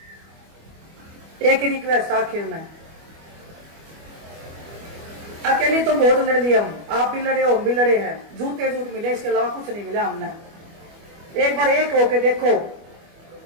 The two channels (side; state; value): left; late; 25 ms